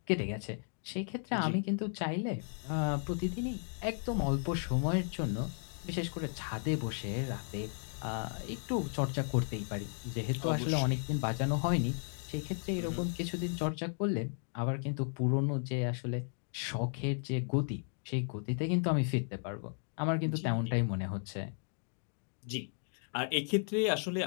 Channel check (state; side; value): silent; right; 55 dB below the other